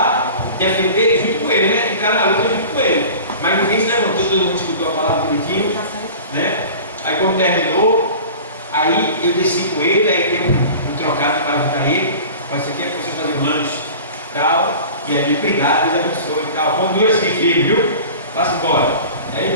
defender junto com ele, né? Entrar na luta junto com ele. Mas ninguém se levantou, todo mundo escutou a palavra bonitinho, né? Aí quando terminou, aí eu desci com ele, aí dei um trocado para ajudar ele. Mas isso aqui é para você fazer um lanche, tal. E aí, obrigado, Deus abençoe e tal. Continua assim, filho, viu? Passa embora. Aí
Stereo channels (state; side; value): inverted; both; correlation -0.38